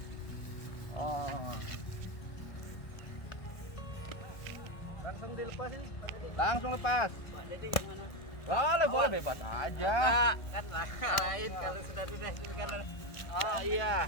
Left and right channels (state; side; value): late; right; 1.5 ms